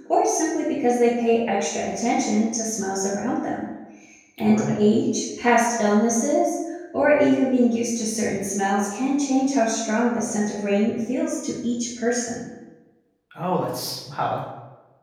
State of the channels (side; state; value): both; identical; correlation 1.00